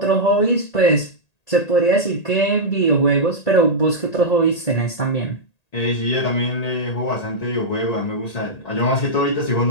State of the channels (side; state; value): right; late; 1.8 ms